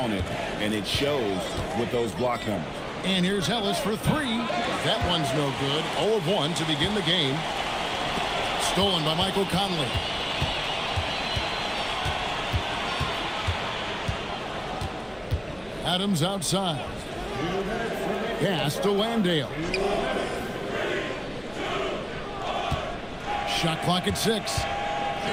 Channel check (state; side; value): identical; both; correlation 1.00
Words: and it shows with those block numbers. And here's Ellis for three. That one's no good. 0 of 1 to begin the game. Stolen by Michael Conley. Adams outside. Pass to Landale. Shot clock at 6.